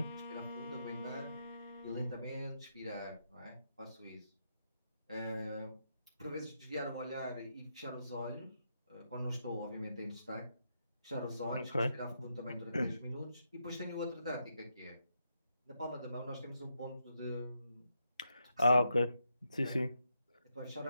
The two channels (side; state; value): both; inverted; correlation -0.82